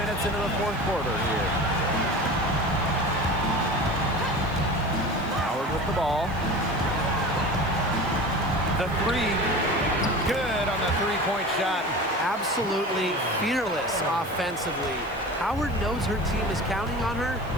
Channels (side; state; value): right; noise; hiss, 26 dB below the sound